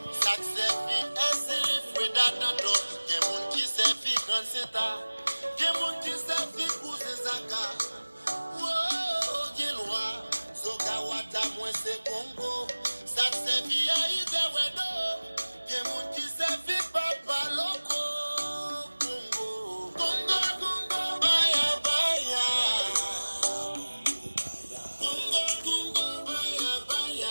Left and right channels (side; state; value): both; inverted; correlation -1.00